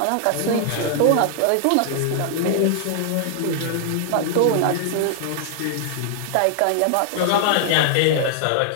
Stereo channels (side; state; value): both; different; correlation 0.00